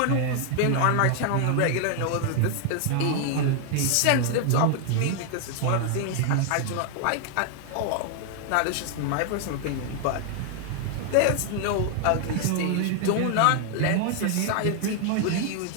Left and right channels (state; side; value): different; both; correlation 0.00